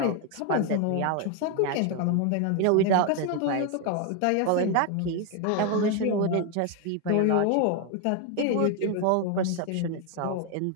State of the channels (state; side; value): different; both; correlation 0.01